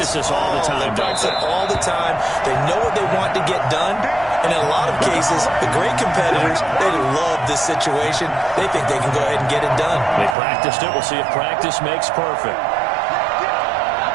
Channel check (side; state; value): left; drops out; at 10.4 s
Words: this all the time. They practice it all the time. They know what they want to get done. And in a lot of cases, the great competitors, they love this situation. They think they can go ahead and get it done. They practiced it. We'll see if practice makes perfect.